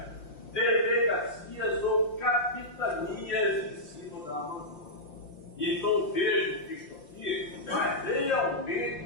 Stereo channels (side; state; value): right; late; 5.7 ms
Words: delegacias ou capitanias em cima da Amazônia. Então vejo que isso aqui vai